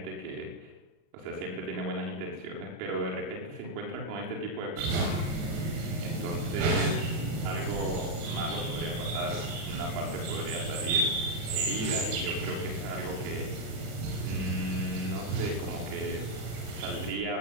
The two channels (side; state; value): left; late; 37 ms